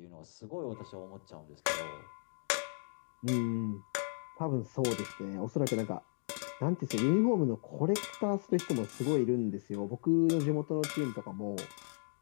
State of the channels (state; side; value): silent; right; digital silence